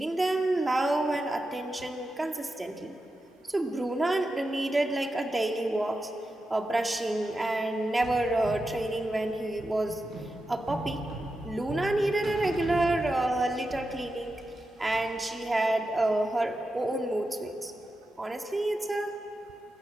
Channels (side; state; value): both; normal; correlation 0.90